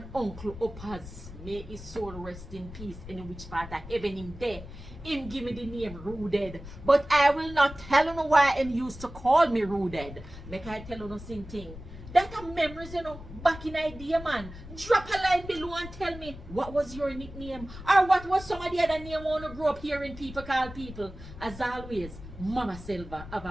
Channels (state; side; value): noise; left; rumble, 14 dB below the sound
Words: uncle Opaz, may his soul rest in peace in which part of heaven him there. Him give me the name Rooted. But I will not tell you why him used to call me Rooted. Make I tell you no same thing. That are memories, you know, back in idea, man. Drop a line below and tell me what was your nickname or what was some of the other name when you grew up hearing people call people. As always, Mama Selva, have